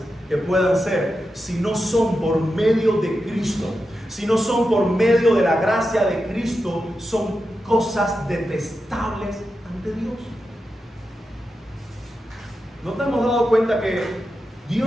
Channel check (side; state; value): both; normal; correlation 0.89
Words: que puedan ser, si no son por medio de Cristo, si no son por medio de la gracia de Cristo, son cosas detestables ante Dios. ¿No te hemos dado cuenta que